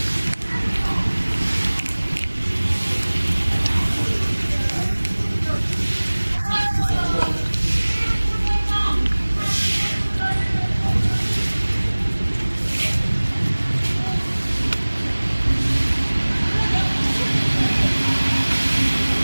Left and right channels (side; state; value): both; inverted; correlation -1.00